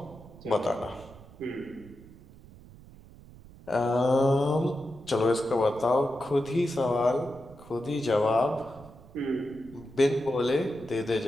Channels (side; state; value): right; noise; rumble, 20 dB below the sound